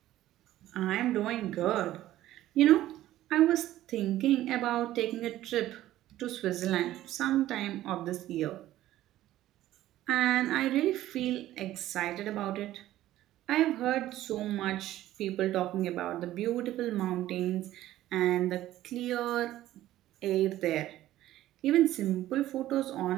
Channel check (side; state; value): left; quieter; 14.3 dB